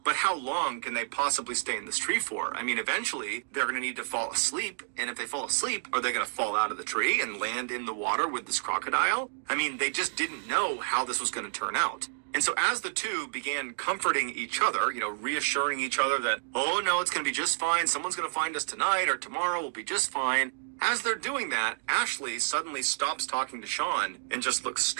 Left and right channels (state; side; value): silent; left; digital silence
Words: but how long can they possibly stay in this tree for? I mean, eventually, they're going to need to fall asleep. And if they fall asleep, are they going to fall out of the tree and land in the water with this crocodile? I mean, they just didn't know how this was going to turn out. And so as the two began comforting each other, reassuring each other that, oh no, it's going to be just fine. Someone's going to find us tonight or tomorrow. We'll be just fine. As they're doing that, Ashley suddenly stops talking to Sean and just looks